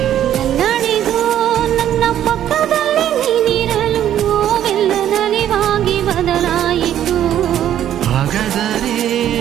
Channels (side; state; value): left; quieter; 11.1 dB